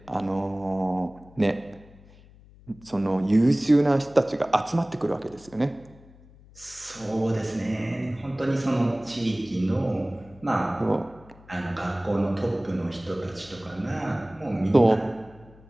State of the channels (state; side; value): noise; left; hum, 24 dB below the sound